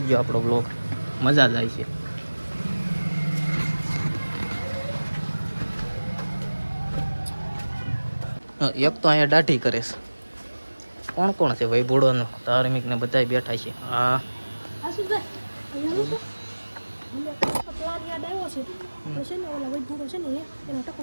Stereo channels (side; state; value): both; inverted; correlation -1.00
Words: આપણો બ્લોગ, મજા જ આવી છે. એક તો અહીંયા દાઢી કરે છે. કોણ કોણ છે ભાઈ? ભૂડોનો ધાર્મિક ને બધા બેઠા છે. હા પ્લાન યાદ આવ્યો છે. આપણે છે ને ઓલા વૈભૂરો છે ને એનો ટકો